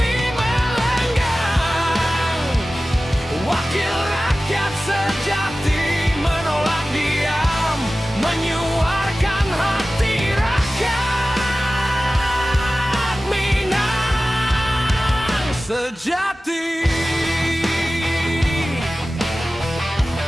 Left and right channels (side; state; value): both; normal; correlation 0.96